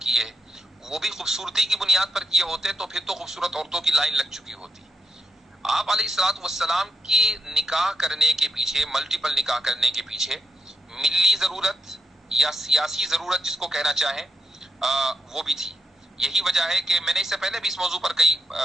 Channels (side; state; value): both; normal; correlation 0.82